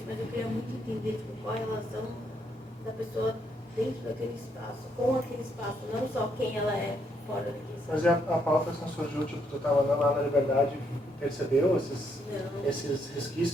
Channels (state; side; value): normal; both; correlation 0.74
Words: mas eu queria muito entender tipo, qual a relação da pessoa dentro daquele espaço, com aquele espaço, não só quem ela é fora daquele espaço. Mas e a pauta assim surgiu, tipo, tu estava andando lá na Liberdade e percebeu esses